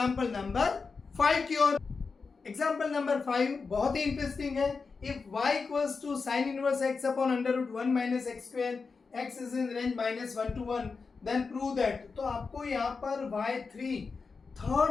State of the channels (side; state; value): right; quieter; 4.7 dB